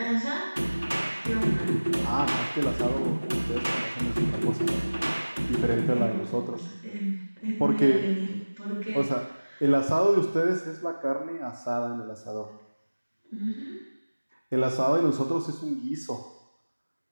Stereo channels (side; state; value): both; inverted; correlation -1.00